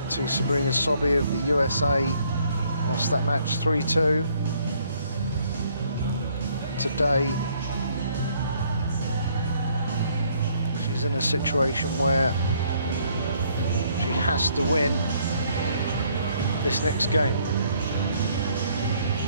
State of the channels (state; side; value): inverted; both; correlation -0.65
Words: to Sabrina Sobby of the USA. Lost that match 3-2. Today, she's in a situation where she has to win this next game,